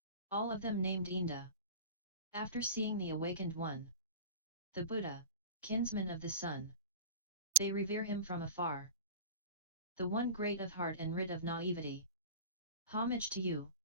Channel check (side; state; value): both; inverted; correlation -0.36